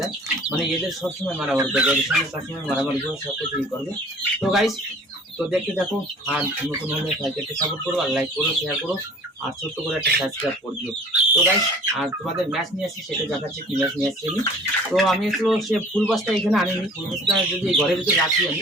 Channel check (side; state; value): both; normal; correlation 0.48